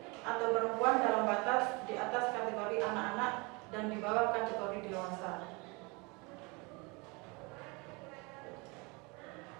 atau perempuan dalam batas di atas kategori anak-anak dan di bawah kategori dewasa.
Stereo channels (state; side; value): quieter; left; 28.1 dB